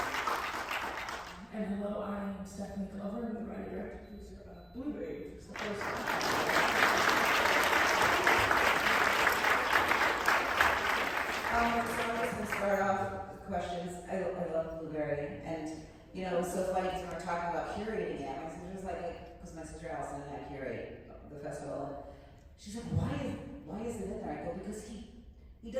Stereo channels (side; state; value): both; identical; correlation 1.00